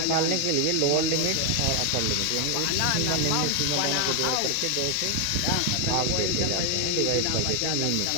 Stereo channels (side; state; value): both; different; correlation 0.00